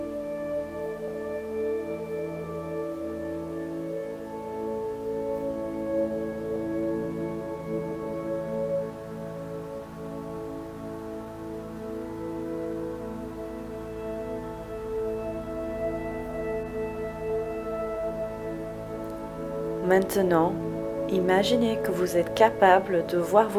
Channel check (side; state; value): both; identical; correlation 1.00